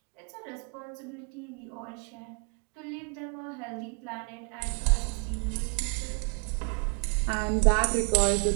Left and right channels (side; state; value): left; quieter; 38.2 dB